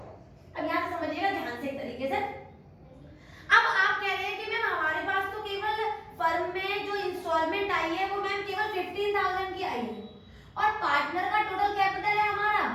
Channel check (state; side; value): identical; both; correlation 1.00